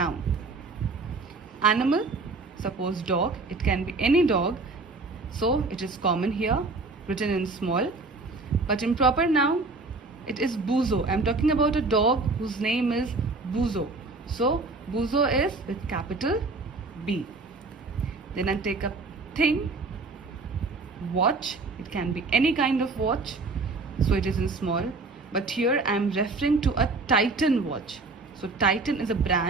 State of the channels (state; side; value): quieter; left; 3.6 dB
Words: Animal, suppose dog, it can be any dog, so it is common here, written in small. But in proper noun, it is Buzo. I am talking about a dog whose name is Buzo. So Buzo is with capital B. Then I take up thing, watch. It can be any kind of watch, so it is in small. But here I am referring to a Titan watch. So Titan is a